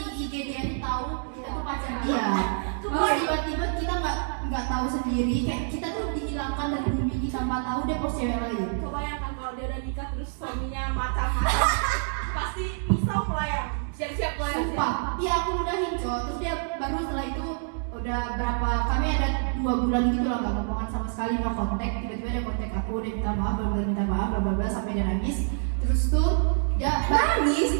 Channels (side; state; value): left; silent; digital silence